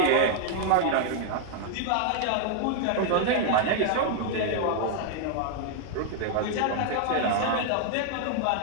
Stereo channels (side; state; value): both; different; correlation 0.00